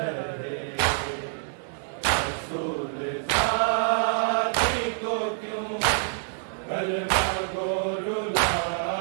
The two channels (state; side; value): silent; left; digital silence